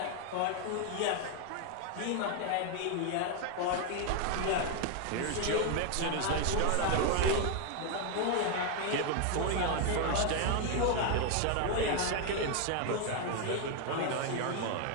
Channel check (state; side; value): different; both; correlation 0.01